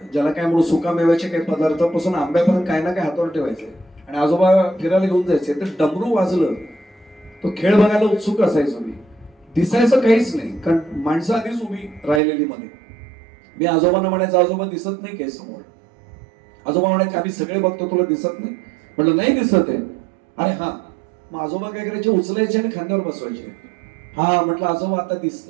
ज्याला काय म्हणून सुकामेव्याचे काही पदार्थापासून आंब्यापर्यंत काय ना काय हातावर ठेवायचे आणि आजोबा फिरायला घेऊन जायचे. तर डमरू वाजलं, तो खेळ बघायला उत्सुक असायचो मी. दिसायचं काहीच नाही, कारण माणसं आधीच उभी राहिलेली मध्ये. मी आजोबांना म्हणायचं आजोबा दिसत नाही काय समोर. आजोबा म्हणायचे आम्ही सगळे बघतो तुला दिसत नाही. म्हटलं नाही दिसत आहे. अरे हा. मग आजोबा काय करायचे, उचलायचे आणि खांद्यावर बसवायचे. हा म्हटलं आजोबा आता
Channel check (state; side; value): drops out; left; at 12.2 s